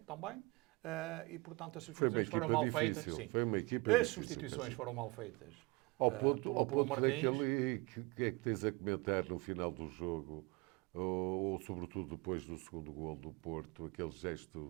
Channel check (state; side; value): quieter; left; 24.8 dB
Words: também, e, portanto, as substituições foram mal feitas. Sim. Foi uma equipa As difícil, substituições foram mal feitas. Ao ponto Martins. daquele que é que tens a comentar no final do jogo, ou sobretudo depois do segundo gol do Porto, aquele